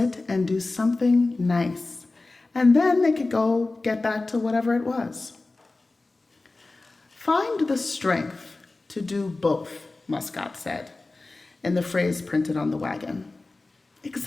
and do something nice. And then they could go get back to whatever it was. Find the strength to do both, Muscat said, in the phrase printed on the wagon.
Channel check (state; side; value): quieter; right; 3.3 dB